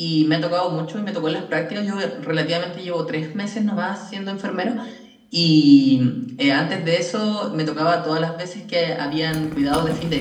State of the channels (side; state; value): both; identical; correlation 1.00